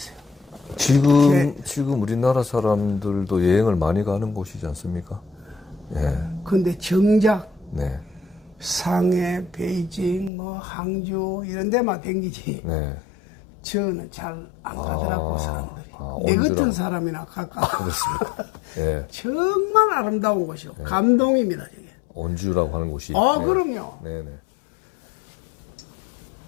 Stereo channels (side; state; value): right; drops out; at 10.3 s